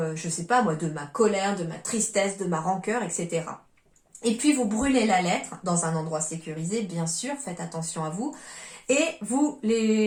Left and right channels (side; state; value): both; identical; correlation 1.00